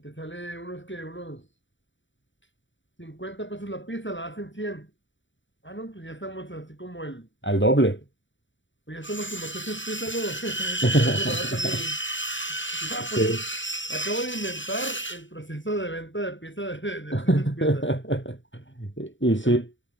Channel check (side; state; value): right; late; 0.55 ms